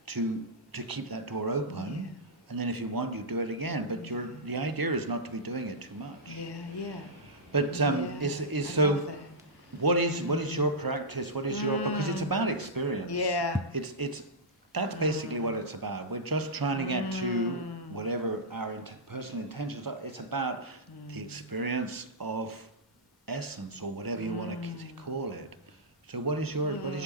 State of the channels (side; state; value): both; normal; correlation -0.12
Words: to keep that door open. And then if you want, you do it again. But the idea is not to be doing it too much. But what is your practice? What is your, because it's about experience. It's that's basically what it's about. We're just trying to get to whatever our personal intentions are. It's about the experience of essence, or whatever you want to call it. So what is your